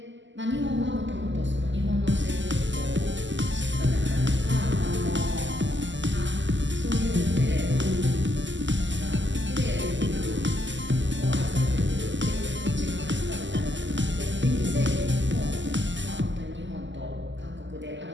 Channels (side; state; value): left; late; 0.54 ms